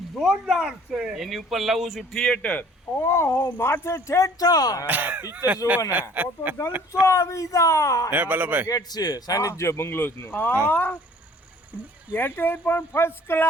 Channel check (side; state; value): both; normal; correlation 0.53